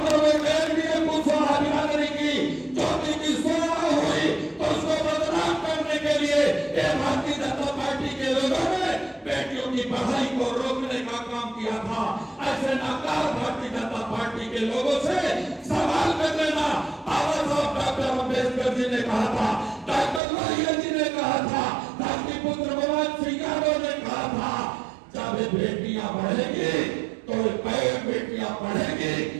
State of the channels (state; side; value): drops out; left; at 20.2 s